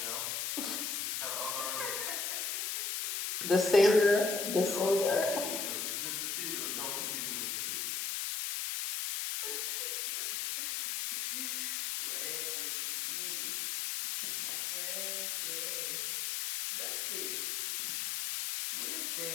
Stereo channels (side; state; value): left; noise; hiss, 1 dB below the sound